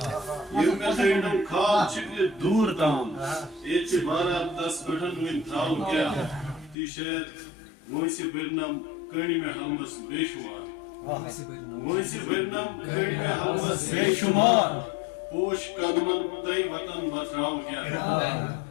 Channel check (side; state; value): right; drops out; at 6.8 s